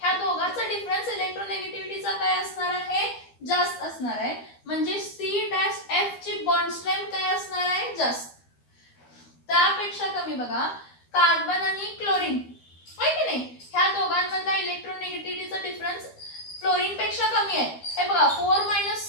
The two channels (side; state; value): right; late; 12 ms